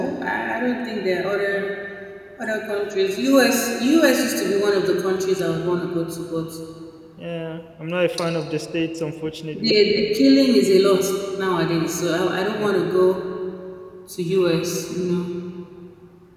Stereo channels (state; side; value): identical; both; correlation 1.00